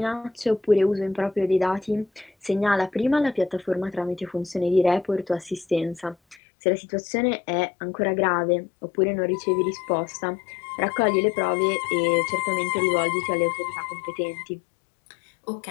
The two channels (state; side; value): drops out; right; at 6.4 s